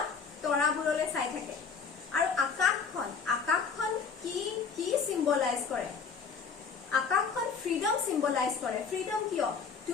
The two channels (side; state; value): right; quieter; 5.7 dB